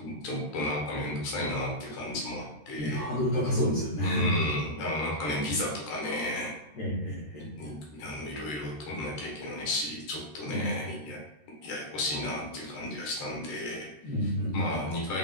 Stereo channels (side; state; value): right; late; 13 ms